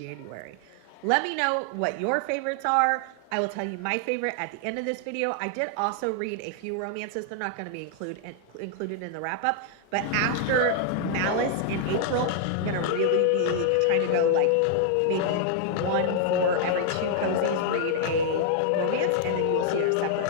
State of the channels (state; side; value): different; both; correlation -0.01